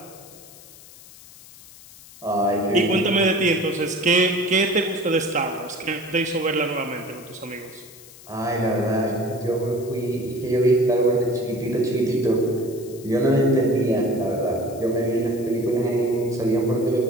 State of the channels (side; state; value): left; noise; hiss, 20 dB below the sound